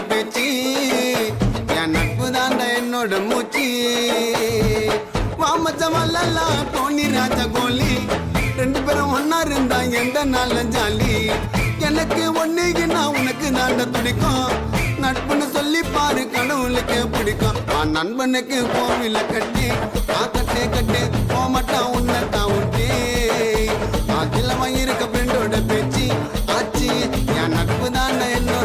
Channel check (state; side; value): identical; both; correlation 1.00